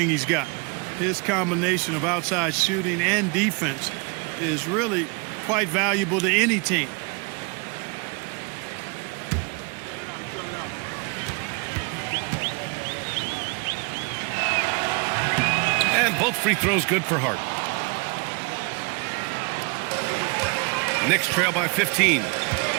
he's got. His combination of outside shooting and defense is really quite valuable to any team. And both free throws good for Hart. Knicks trail by 15.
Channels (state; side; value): quieter; left; 31.7 dB